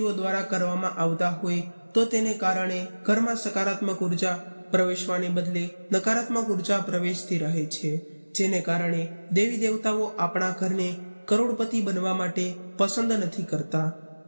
દ્વારા કરવામાં આવતા હોય તો તેને કારણે ઘરમાં સકારાત્મક ઉર્જા પ્રવેશવાને બદલે નકારાત્મક ઉર્જા પ્રવેશતી રહે છે, જેને કારણે દેવી દેવતાઓ આપણા ઘરને કરોડપતિ બનવા માટે પસંદ નથી કરતા.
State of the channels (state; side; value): inverted; both; correlation -1.00